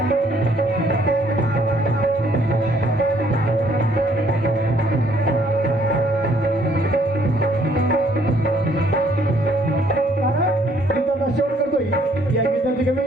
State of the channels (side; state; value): both; normal; correlation 0.64